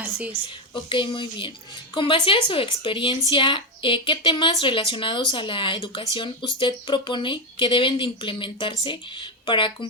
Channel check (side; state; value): both; normal; correlation 0.08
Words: Así es. Ok, muy bien. Con base a su experiencia, ¿qué temas relacionados a la educación usted propone que deben de implementarse para